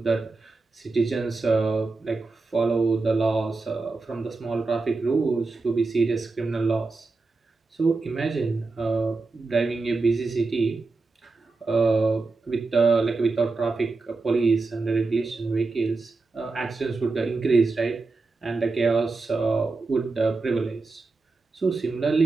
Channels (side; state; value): left; quieter; 3.8 dB